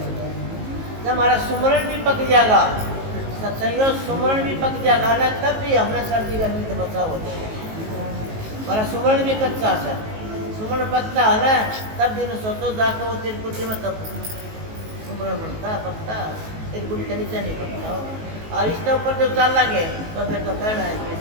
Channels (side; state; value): left; late; 19 ms